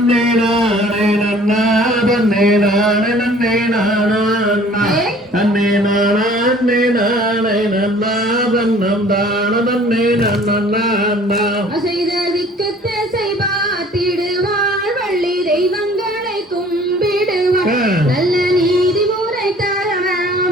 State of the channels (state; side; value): normal; both; correlation 0.52